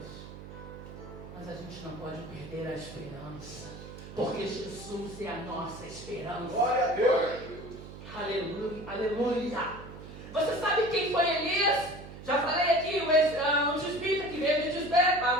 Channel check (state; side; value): noise; right; hum, 14 dB below the sound